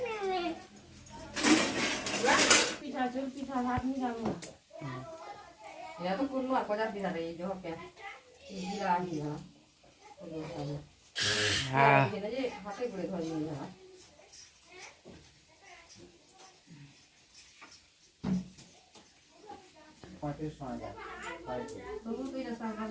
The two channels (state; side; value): identical; both; correlation 1.00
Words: এটা তো কোন আর কজার পিঠা রে যে হবে বিলাহি না হ্যাঁ এটা যে হাতে করে ধরে নিয়ে যাওয়া